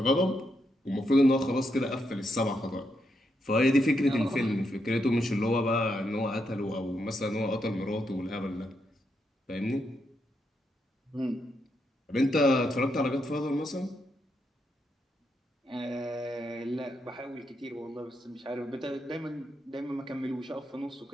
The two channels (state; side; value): normal; both; correlation 0.81